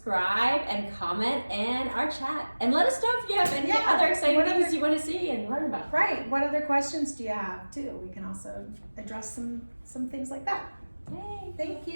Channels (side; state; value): both; inverted; correlation -1.00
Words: and comment in our chat. And let us know if you have any other exciting things you want to see and learn about. Right. What other questions do you have, too? We can also address some things like that. Yay. Thank